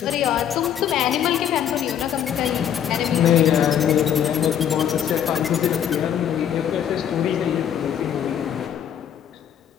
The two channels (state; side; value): quieter; right; 9.4 dB